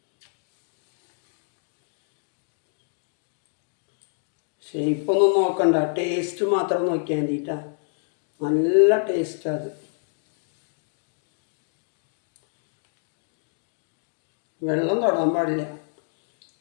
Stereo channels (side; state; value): right; silent; digital silence